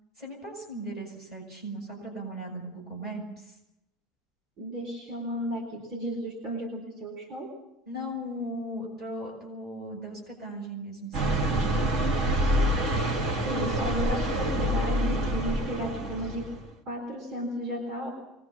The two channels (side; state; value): both; normal; correlation 0.40